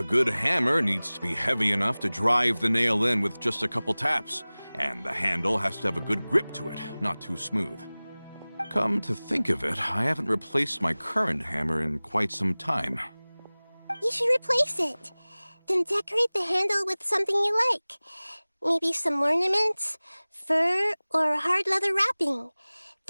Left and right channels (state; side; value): inverted; both; correlation -0.99